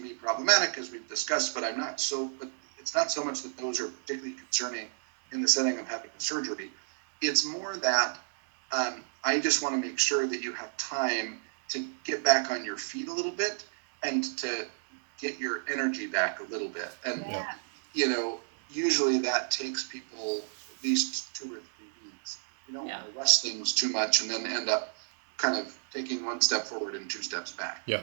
problematic, as we've discussed, but but it's not so much that those are particularly concerning in the setting of having a surgery. It's more that I just want to make sure that you have time to get back on your feet a little bit and to get your energy back a little bit. And, you know, usually that takes people at least 2 or 3 weeks. You don't want to rush things too much and then end up kind of taking 1 step forward and 2 steps back. Yeah.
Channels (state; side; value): silent; left; digital silence